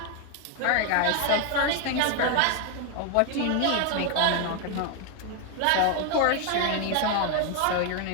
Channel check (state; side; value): different; both; correlation 0.01